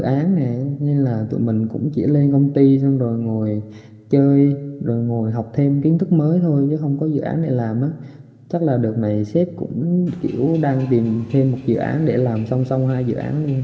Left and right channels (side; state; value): both; identical; correlation 1.00